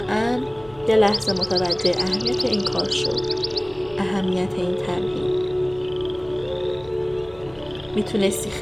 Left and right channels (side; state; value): left; noise; hum, 25 dB below the sound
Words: یه لحظه متوجه اهمیت این کار شو، اهمیت این تمرین. میتونستی